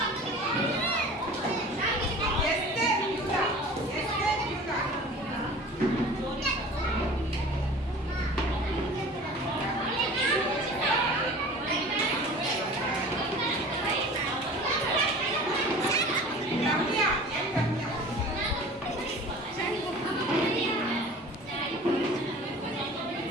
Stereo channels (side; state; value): both; normal; correlation 0.41